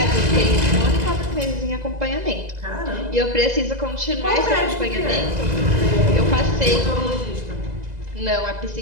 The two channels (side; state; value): left; late; 2.0 ms